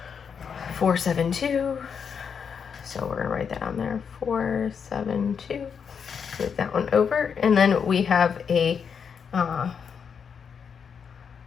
472. So we're gonna write that on there. 472. Move that one over, and then we have a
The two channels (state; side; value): quieter; right; 6.7 dB